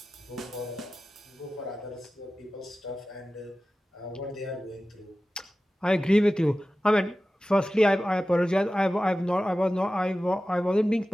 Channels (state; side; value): normal; both; correlation 0.95